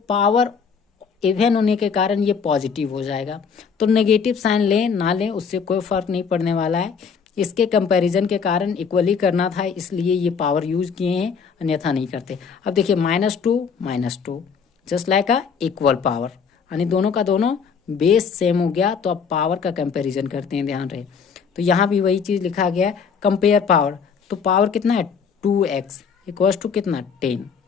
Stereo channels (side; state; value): right; quieter; 6.2 dB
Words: पावर इवन होने के कारण ये पॉजिटिव हो जाएगा, तो नेगेटिव साइन लें ना लें उससे कोई फर्क नहीं पड़ने वाला है। इसके कंपैरिजन के कारण इक्वली करना था, इसलिए ये पावर यूज किए हैं, अन्यथा नहीं करते। अब देखिए -2 just like a equal power, यानी दोनों का दोनों बेस सेम हो गया, तो अब पावर का कंपैरिजन करते हैं, ध्यान रहे। तो यहाँ भी वही चीज़ लिखा गया है, कंपेयर पावर, तो पावर कितना है 2x इक्वल्स टू कितना 10,